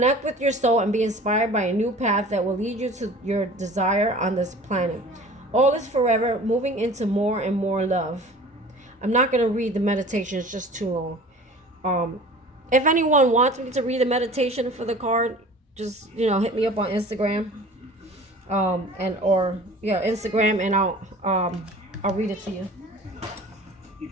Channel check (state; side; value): normal; both; correlation 0.43